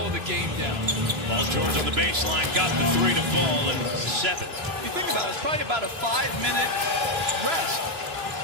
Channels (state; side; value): late; left; 3.0 ms